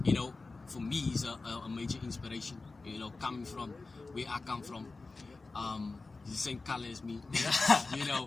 you know, for me, is a major inspiration. You know, coming from where I come from, he's the same color as me. You know,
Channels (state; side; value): quieter; right; 3.7 dB